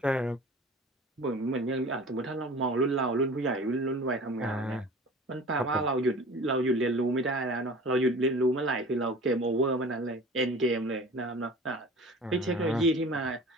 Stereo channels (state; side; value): normal; both; correlation 0.41